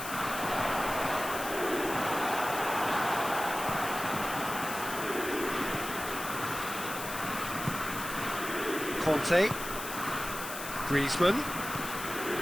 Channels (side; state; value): left; noise; hiss, 8 dB below the sound